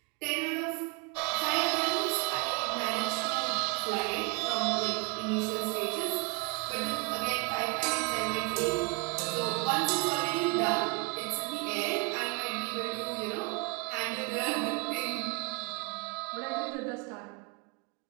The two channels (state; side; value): quieter; left; 29.1 dB